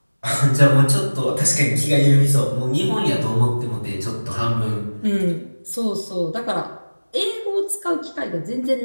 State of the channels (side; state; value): both; inverted; correlation -1.00